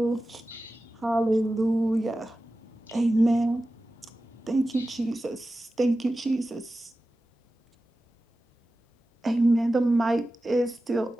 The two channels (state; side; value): normal; both; correlation 0.95